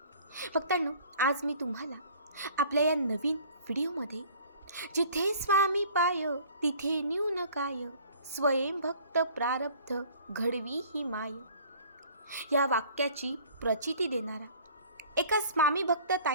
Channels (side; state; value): both; inverted; correlation -0.51